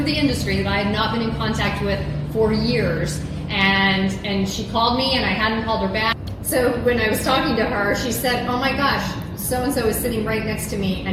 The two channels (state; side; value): identical; both; correlation 1.00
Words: the industry, that I had not been in contact with for years, and she called me, and I hadn't called her back. So when I was talking to her, she said, "Oh my gosh, so-and-so is sitting right next to me,